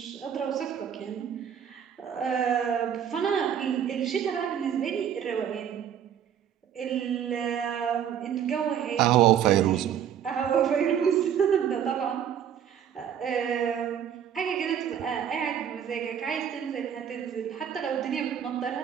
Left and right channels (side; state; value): left; quieter; 9.0 dB